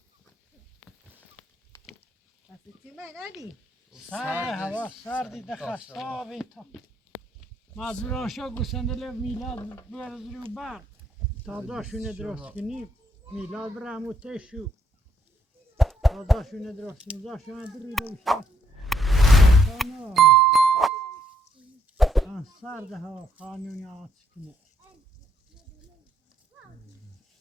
بس چی من ندی سرد هوا سردی دخستابی تا مجبوران شو گوسنده میلاد برز رو بر تازه‌شونه درست کنیم میلاد برم و تشو تازه‌شونه درست کنیم تازه‌شونه دریده بشه سرد هوا خانونی آت کنه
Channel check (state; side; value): normal; both; correlation 0.71